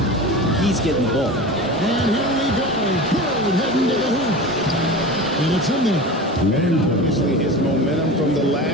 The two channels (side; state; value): both; normal; correlation 0.31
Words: he's getting the ball. And here we go. Bird heading to the hoop. And it's in there. And obviously his momentum from the